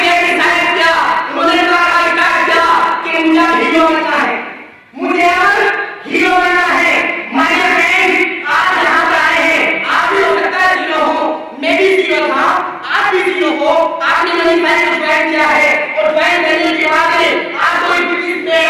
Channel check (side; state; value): both; identical; correlation 1.00